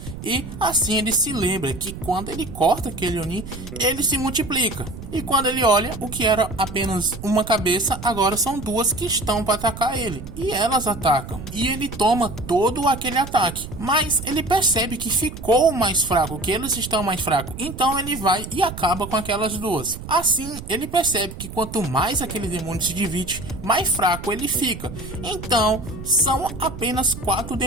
e assim ele se lembra que quando ele corta aquele Oni, ele se multiplica, e quando ele olha, o que era apenas uma cabeça, agora são duas que estão para atacar ele, e elas atacam, e ele toma todo aquele ataque, mas ele percebe que ficou mais fraco, que eles estão mais fracos, então ele vai e acaba com aquelas duas. Assim, ele percebe que quanto mais aquele demônio se divide, mais fraco ele fica. Então, são apenas 4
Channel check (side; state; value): right; noise; rumble, 11 dB below the sound